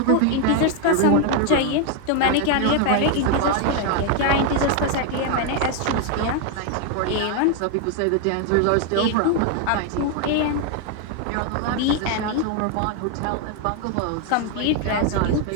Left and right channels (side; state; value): both; different; correlation 0.01